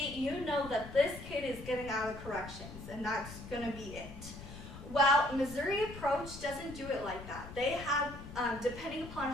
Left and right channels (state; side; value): noise; left; rumble, 13 dB below the sound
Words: you know that this kid is getting out of corrections, and that's going to be it. Well, Missouri approach doesn't do it like that. They have, depending upon